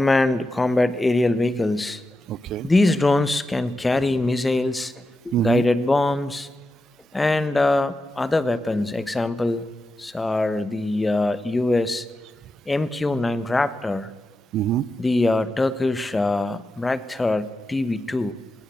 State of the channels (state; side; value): normal; both; correlation 0.89